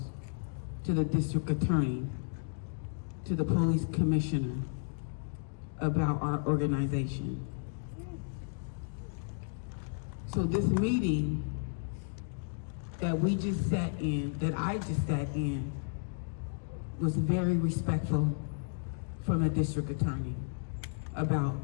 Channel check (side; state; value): right; silent; digital silence